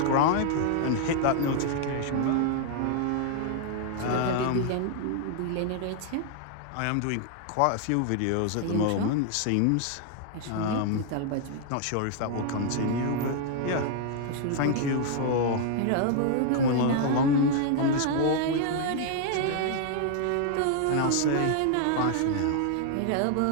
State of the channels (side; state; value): both; different; correlation 0.00